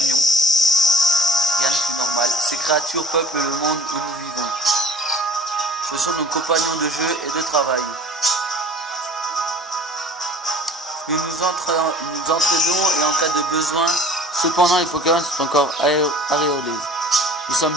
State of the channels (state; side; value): normal; both; correlation 0.46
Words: Rien de plus normal. Ces créatures peuplent le monde où nous vivons. Ce sont nos compagnons de jeu et de travail. Nous entraînons et en cas de besoin. Cependant, les Pokémon sont encore auréolés. Nous sommes